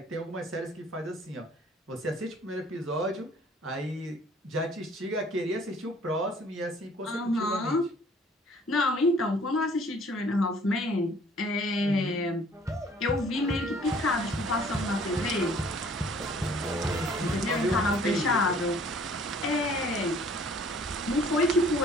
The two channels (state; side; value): normal; both; correlation 0.56